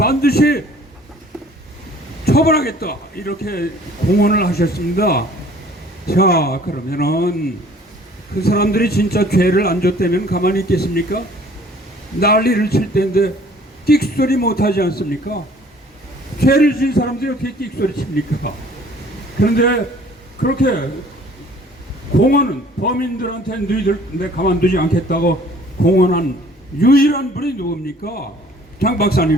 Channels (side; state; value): both; normal; correlation 0.54